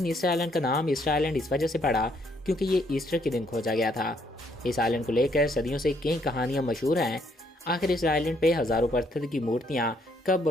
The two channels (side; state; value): both; normal; correlation 0.70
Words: ईस्टर आइलैंड का नाम ईस्टर आइलैंड इस वजह से पड़ा क्योंकि ये ईस्टर के दिन खोजा गया था। इस आइलैंड को लेकर सदियों से कई कहानियाँ मशहूर हैं। आखिर इस आइलैंड पे हज़ारों पत्थर की मूर्तियाँ कब